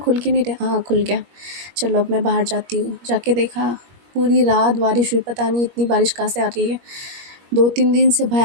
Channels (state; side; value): late; left; 21 ms